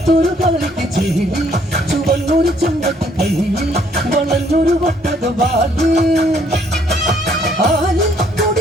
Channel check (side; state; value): both; normal; correlation 0.65